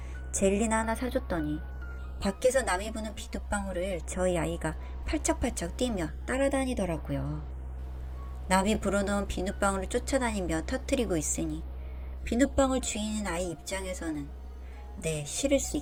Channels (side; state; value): both; identical; correlation 1.00